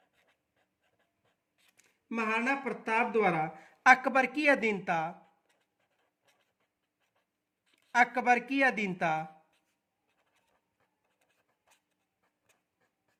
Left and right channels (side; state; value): both; identical; correlation 1.00